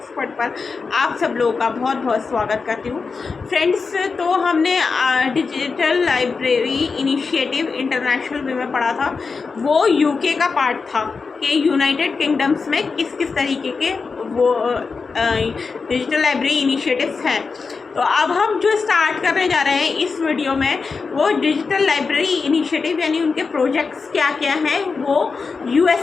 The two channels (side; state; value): right; quieter; 4.8 dB